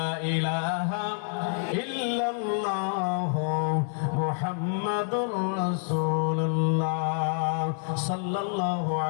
ইলাহা ইল্লাল্লাহ মুহাম্মাদুর রাসূলুল্লাহ সাল্লাল্লাহু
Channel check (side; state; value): right; silent; 60 dB below the other